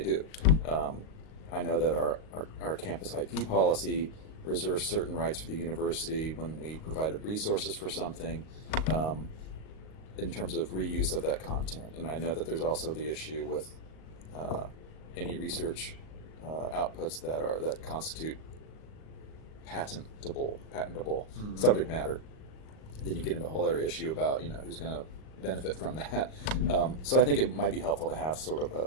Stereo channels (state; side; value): late; right; 38 ms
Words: do? I know that our campus IP policy reserves certain rights for the university when we provided resources for something in terms of reuse of that content. And I know that there's also the issue with any research outputs that constitute patentable subject matter. Then you get into a whole other issue about who's going to benefit from that. So I think it might be helpful to have sort